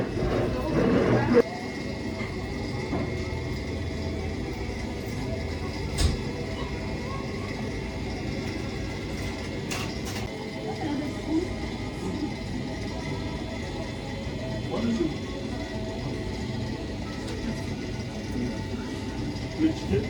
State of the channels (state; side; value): identical; both; correlation 1.00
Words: Ouais, monsieur. Le ticket?